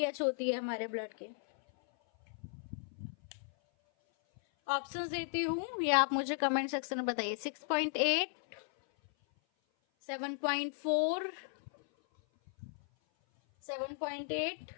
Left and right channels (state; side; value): silent; right; 54 dB below the other